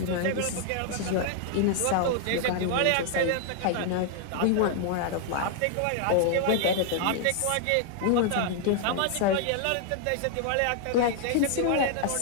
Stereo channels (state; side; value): different; both; correlation 0.00